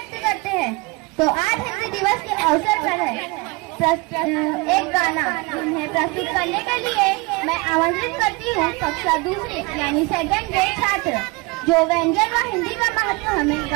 करते हैं। तो आज हिंदी दिवस के अवसर पर है एक गाना उन्हें प्रस्तुत करने के लिए मैं आमंत्रित करती हूँ कक्षा दूसरी यानी सेकंड के छात्र, जो व्यंजन व हिंदी का महत्व हमें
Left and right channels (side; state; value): left; quieter; 26.2 dB